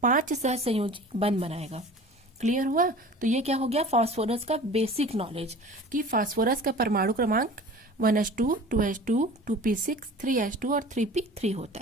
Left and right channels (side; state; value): both; normal; correlation 0.41